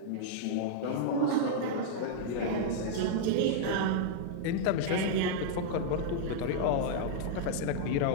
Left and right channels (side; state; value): both; different; correlation -0.02